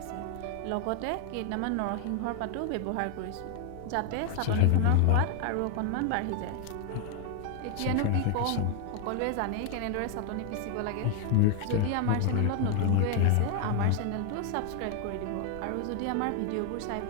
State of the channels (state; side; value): different; both; correlation 0.00